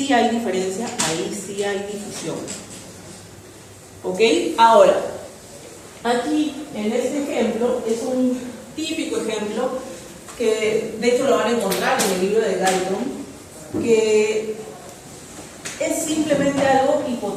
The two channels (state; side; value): identical; both; correlation 1.00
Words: hay diferencia, ahí sí hay difusión. ¿Ok? Ahora, aquí en este ejemplo es un típico ejemplo que de hecho lo van a encontrar en el libro de Galton, que es simplemente algo